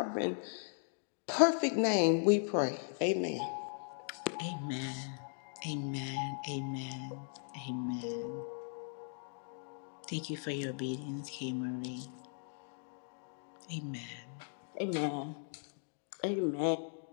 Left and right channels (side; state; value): right; silent; 53 dB below the other